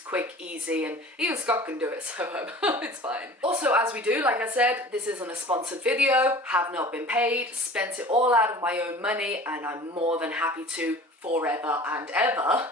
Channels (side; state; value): both; normal; correlation 0.42